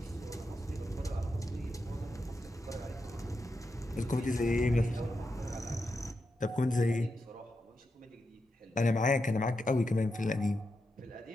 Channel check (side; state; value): both; normal; correlation 0.87